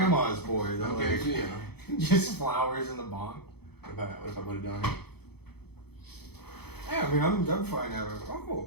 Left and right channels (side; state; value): right; late; 0.97 ms